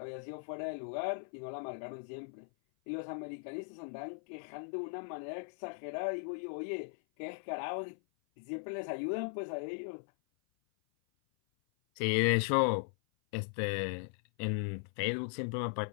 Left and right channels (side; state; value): right; silent; 52 dB below the other